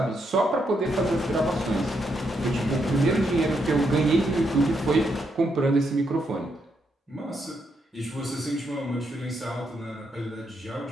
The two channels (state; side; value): normal; both; correlation 0.79